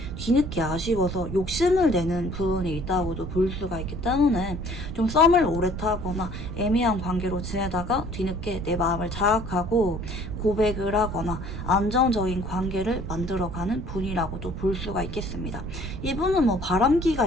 뒤늦게 아쉬워서 욕심을 내는 부분이 있다고도 볼 수가 있기 때문에 좀 썸을 오래 타거나 애매한 관계로 지내다가 뒤늦게 내 마음을 자각하고 고백을 하거나 안정적인 관계를 만들어가는 분이라고도 볼 수가 있겠습니다. 이분은 뭐 바람기가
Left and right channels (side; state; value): right; noise; rumble, 10 dB below the sound